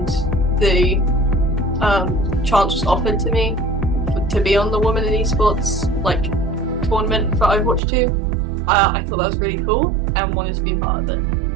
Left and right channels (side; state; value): left; drops out; at 7.8 s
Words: the chance was offered to me to be on the Women in Esports tournament for Overwatch 2, I thought that was really cool and wanted to be a part of it.